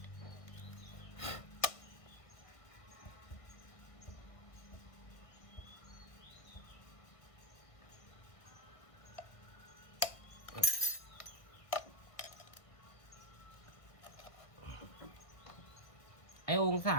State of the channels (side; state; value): right; late; 1.5 ms